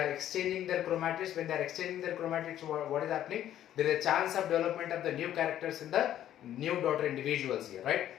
exchanging their chromatids. When they are exchanging their chromatids, what is happening? There is a chance of development of the new characters in the new daughter individuals here, right?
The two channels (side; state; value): right; quieter; 11.6 dB